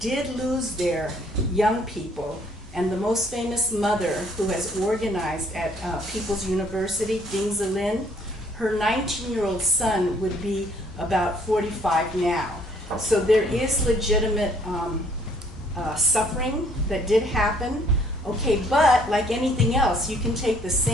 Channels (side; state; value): both; normal; correlation 0.62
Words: did lose their young people, and the most famous mother who has organized at People's University, Ding Zilin, her 19-year-old son would be about 45 now. So there is legitimate suffering that did happen. Okay, but like anything else, you can take the